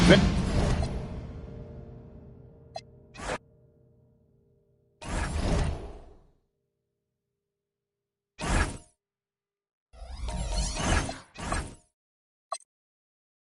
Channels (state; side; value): identical; both; correlation 1.00